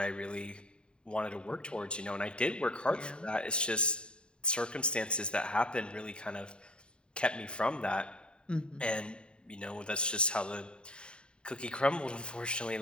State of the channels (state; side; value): late; right; 0.051 ms